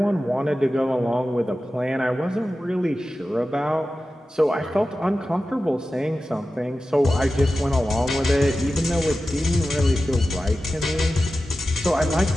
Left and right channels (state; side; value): normal; both; correlation 0.94